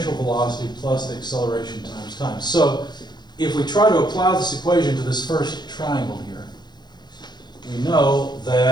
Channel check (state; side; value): late; right; 0.21 ms